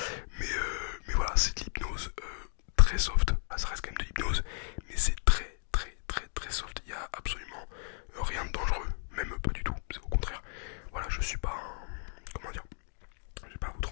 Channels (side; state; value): right; silent; 55 dB below the other